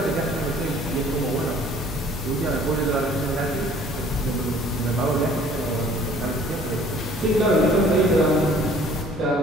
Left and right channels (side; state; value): both; normal; correlation 0.54